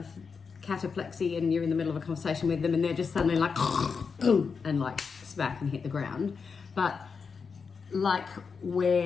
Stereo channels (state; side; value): quieter; right; 5.5 dB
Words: cataplexy and you're in the middle of a conversation with them and they're just suddenly like and like smack and hit the ground, but like